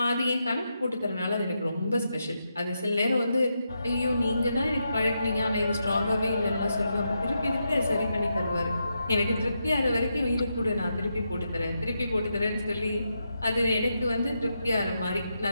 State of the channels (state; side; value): inverted; both; correlation -0.84